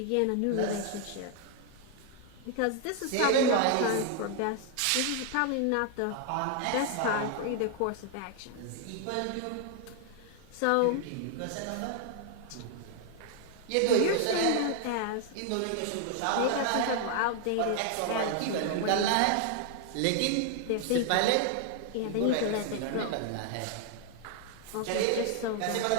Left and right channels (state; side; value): different; both; correlation 0.00